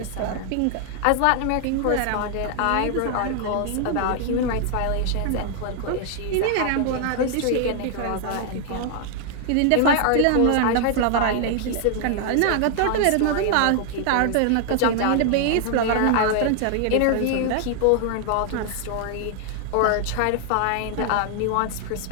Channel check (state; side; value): different; both; correlation 0.00